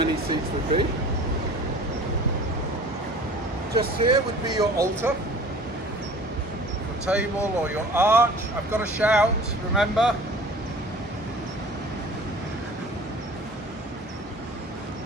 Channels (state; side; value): normal; both; correlation 0.44